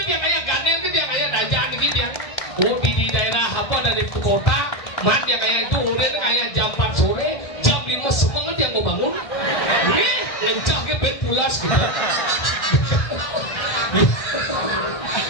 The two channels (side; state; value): right; late; 1.6 ms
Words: kayak ganen itu yang kayak dajaan gitu ya di daerah apa dari kota mat yang kayak itu udah kayak jam 4 sore jam 5 semangat yang mau bangun lencahnya bed pulas gitu